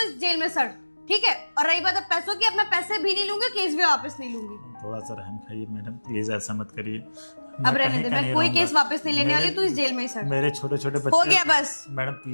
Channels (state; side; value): inverted; both; correlation -1.00